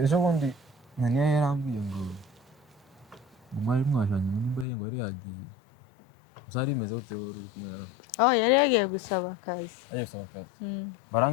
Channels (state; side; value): drops out; right; at 4.7 s